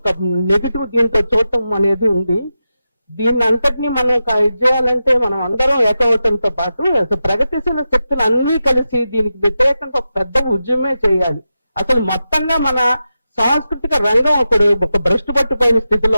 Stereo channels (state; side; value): inverted; both; correlation -0.91